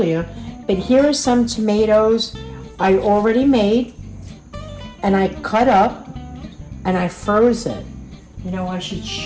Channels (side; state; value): both; identical; correlation 1.00